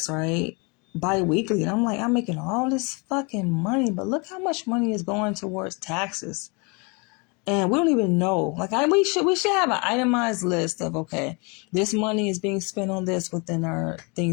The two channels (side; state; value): right; quieter; 30.7 dB